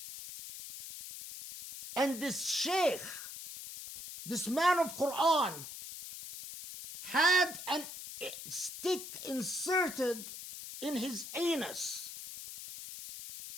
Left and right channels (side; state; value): left; noise; hiss, 10 dB below the sound